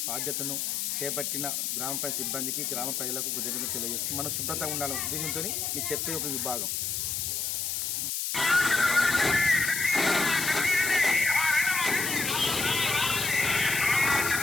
బాధ్యతను చేపట్టిన గ్రామ పంచాయతీ సిబ్బందికి, గ్రామ ప్రజలకు కృతజ్ఞతలు తెలియజేస్తూ మనం శుభ్రతగా ఉండాలనే ఉద్దేశంతో మీకు చెప్పే ఒక విభాగం.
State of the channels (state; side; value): noise; left; hiss, 1 dB below the sound